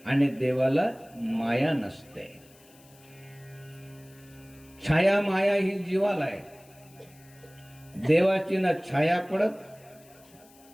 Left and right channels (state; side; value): noise; left; hiss, 26 dB below the sound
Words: आणि देवाला माया नसते. छाया माया ही जीवाला आहे. देवाची ना छाया पडत,